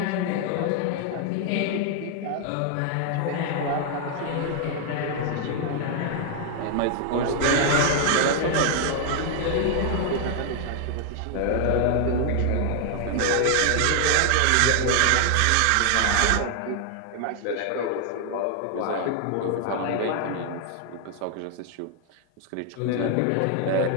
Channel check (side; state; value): both; different; correlation 0.00